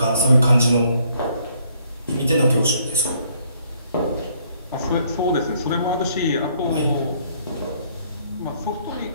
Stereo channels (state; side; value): inverted; both; correlation -0.67